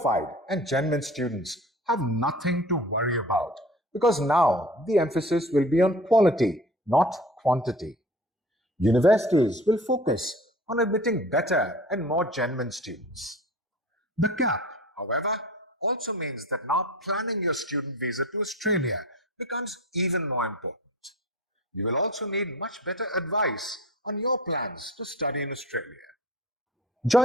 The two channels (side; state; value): both; normal; correlation 0.41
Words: and genuine students have nothing to worry about because now the emphasis will be on quality, not quantity. Universities will focus on admitting better and more genuine students. The cap, however, also means that now planning your student visa to Australia becomes even more important. You will also need much better advice on your plans to study in Australia.